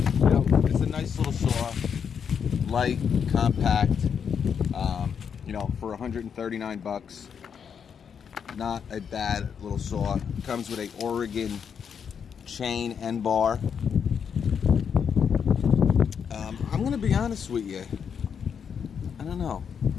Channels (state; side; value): quieter; right; 7.2 dB